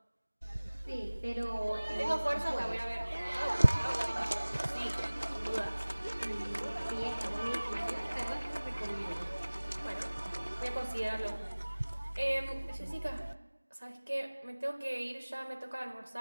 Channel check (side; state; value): both; inverted; correlation -1.00